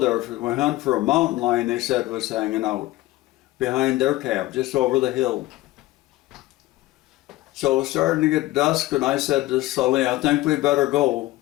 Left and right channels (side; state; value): right; quieter; 17.7 dB